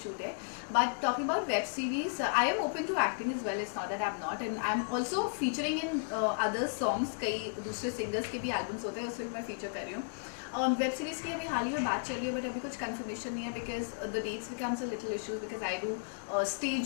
शूट है। But talking about web series, I am open to acting as well, it's not that I am not, and I am also featuring in other songs. कई दूसरे सिंगर्स के भी एल्बम्स होते हैं, उसमें मैं फीचर कर रही हूँ। और वेब सीरीज़ की अभी हाल ही में बात चल रही है बट अभी कुछ कंफर्मेशन नहीं है because the dates becomes a little issues because I do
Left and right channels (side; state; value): right; quieter; 39.9 dB